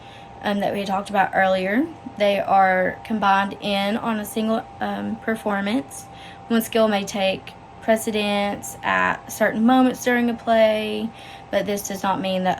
that we talked about earlier, they are combined in on a single performance. One skill may take precedence at certain moments during a play, but this does not mean that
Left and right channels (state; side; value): identical; both; correlation 1.00